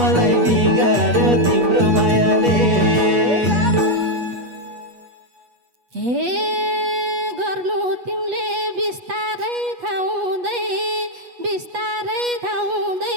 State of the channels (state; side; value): late; left; 8.3 ms